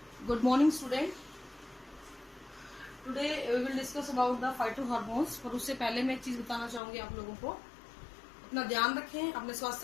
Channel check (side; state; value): right; drops out; at 6.8 s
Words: Good morning, student. Today we will discuss about the phytohormones. पर उससे पहले मैं एक चीज बताना चाहूंगी आप लोगों को, अपना ध्यान रखें, अपने